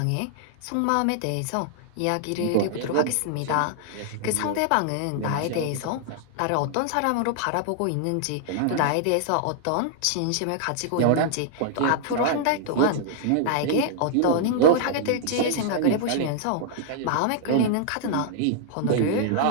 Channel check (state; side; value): different; both; correlation -0.01